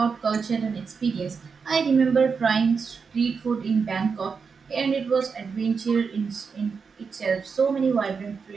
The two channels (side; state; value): left; quieter; 5.5 dB